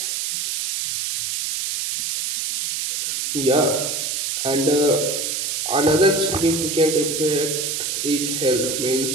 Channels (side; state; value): right; noise; hiss, 2 dB below the sound